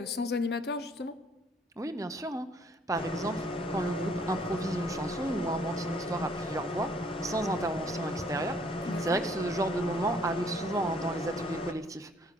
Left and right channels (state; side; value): normal; both; correlation 0.62